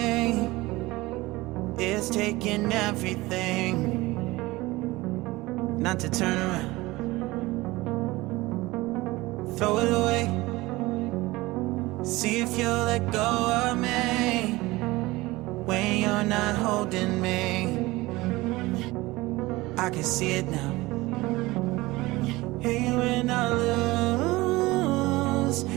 It's taking everything not to turn around. Throw it away. See if you'll let go of me when you're not holding me. I can see it now. Hey, when I lose,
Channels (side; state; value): left; quieter; 20.3 dB